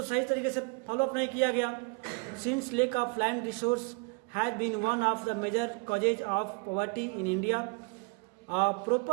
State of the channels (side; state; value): left; quieter; 32.1 dB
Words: सही तरीके से फॉलोअप नहीं किया गया। Since lack of land resource has been one of the major causes of poverty in India,